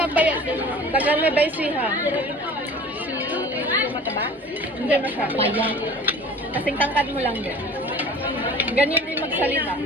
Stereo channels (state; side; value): normal; both; correlation 0.42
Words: din. taga may baysiha. Si mataba? Hindi masyado. Paya. Kasing tangkad mo lang din. Ganyan din magsalita.